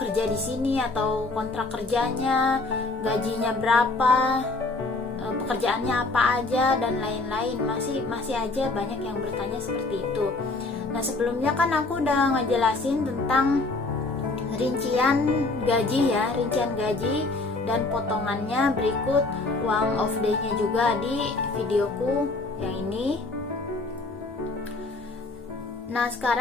di sini atau kontrak kerjanya, gajinya berapa, pekerjaannya apa aja dan lain-lain. Masih aja banyak yang bertanya seperti itu. Nah, sebelumnya kan aku udah ngejelasin tentang rincian gaji dan potongannya berikut uang off day-nya juga di videoku yang ini. Nah,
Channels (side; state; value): right; quieter; 3.3 dB